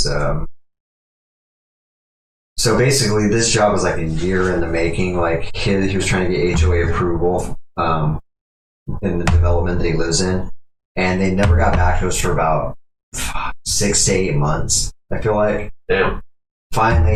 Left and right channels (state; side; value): identical; both; correlation 1.00